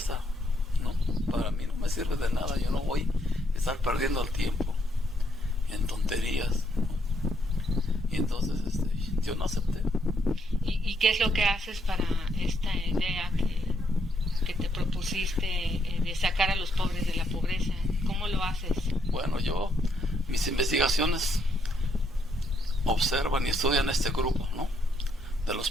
¿no? Para mí no me sirve de nada. Yo no voy a estar perdiendo el tiempo en tonterías, ¿no? Y entonces yo no acepté. ¿Y qué es lo que haces para esta idea que te propusiste de sacar a los pobres de la pobreza? ¿Cómo lo haces? Bueno, mis investigaciones observan y estudian este grupo, ¿no?, de los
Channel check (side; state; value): both; normal; correlation 0.74